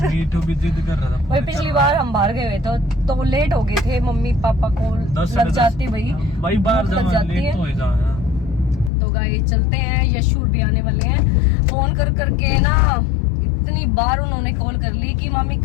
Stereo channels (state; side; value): drops out; right; at 8.9 s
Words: मीठू भी जिद कर रहा था। वही पिछली बार हम बाहर गए हुए तो लेट हो गए थे। मम्मी पापा को लग जाती भाई बाहर लग जाती है। तो गाइस चलते हैं, यशु भी आने वाले हैं। फोन कर करके ना इतनी बार उन्होंने कॉल कर ली कि मामी